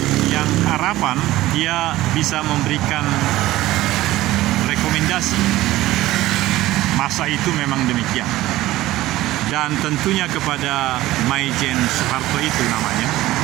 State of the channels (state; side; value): quieter; left; 16.4 dB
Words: yang harapan dia bisa memberikan rekomendasi masa itu memang demikian. Dan tentunya kepada Maijen Soeharto itu namanya,